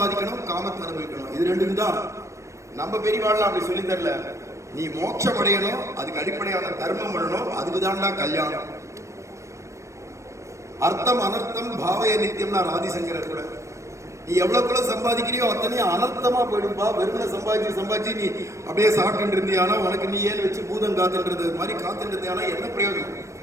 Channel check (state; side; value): late; left; 0.15 ms